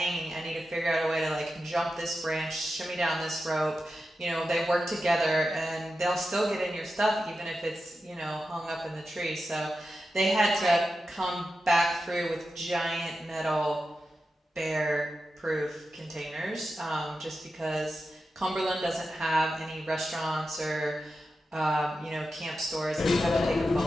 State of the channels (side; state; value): both; normal; correlation 0.91